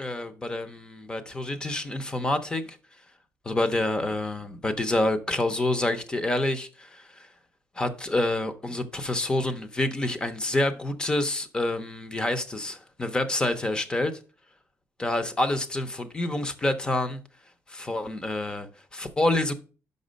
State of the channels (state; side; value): normal; both; correlation 0.77